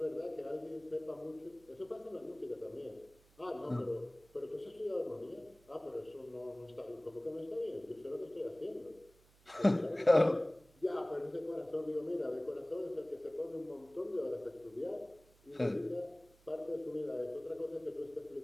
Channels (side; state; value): right; noise; hum, 28 dB below the sound